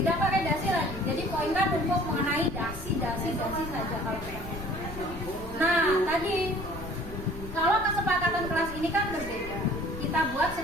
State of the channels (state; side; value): noise; left; rumble, 12 dB below the sound